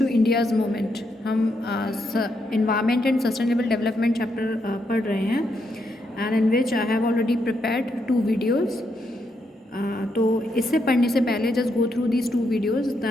India's movement. हम environment and sustainable development chapter पढ़ रहे हैं and in which I have already prepared 2 videos. तो इससे पढ़ने से पहले just go through these 2 videos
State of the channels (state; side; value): normal; both; correlation 0.79